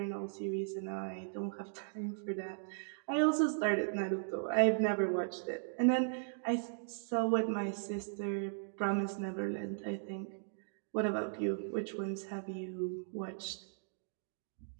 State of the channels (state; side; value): silent; left; digital silence